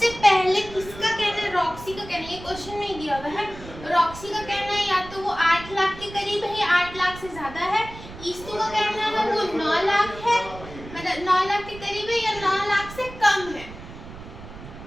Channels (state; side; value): noise; right; rumble, 15 dB below the sound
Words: पहले किसका कहना है, रॉक्सी का कहना है। ये क्वेश्चन नहीं दिया हुआ है। रॉक्सी का कहना है या तो वो 8 लाख के करीब है या 8 लाख से ज़्यादा है। ईस्तु का कहना है वो 9 लाख है, मतलब 9 लाख के करीब है या 9 लाख से कम है,